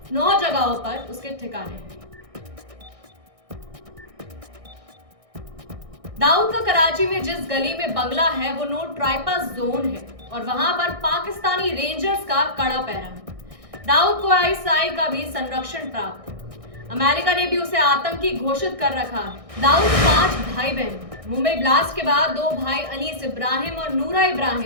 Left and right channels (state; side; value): late; left; 1.6 ms